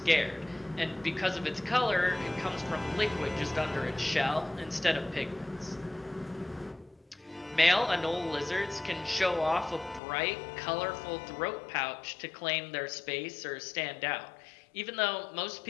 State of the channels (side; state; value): right; drops out; at 10.0 s